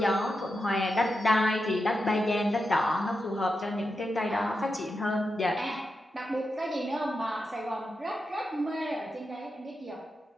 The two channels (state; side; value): normal; both; correlation 0.88